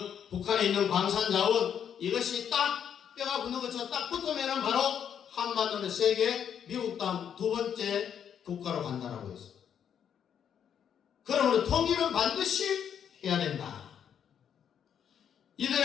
북한에 있는 광산자원, 이것이 딱 뼈가 붙는 것처럼 딱 붙으면 바로 한반도는 세계 미국 다음 두 번째 국가로 간다라고 했어요. 그러므로 통일은 반드시 해야 된다.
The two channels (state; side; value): quieter; right; 8.5 dB